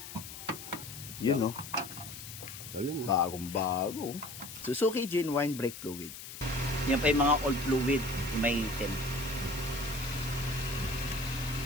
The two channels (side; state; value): left; noise; hiss, 11 dB below the sound